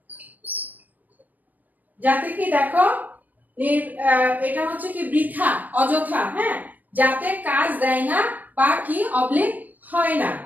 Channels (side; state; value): left; late; 0.083 ms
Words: যাতে কি দেখো, এটা হচ্ছে কি বৃথা, অযথা, হ্যাঁ, যাতে কাজ দেয় না বা কি অবলিক হয় না।